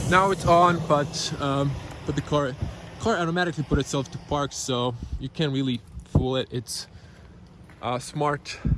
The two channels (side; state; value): both; identical; correlation 1.00